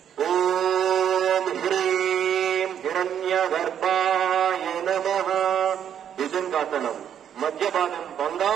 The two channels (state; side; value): quieter; left; 9.2 dB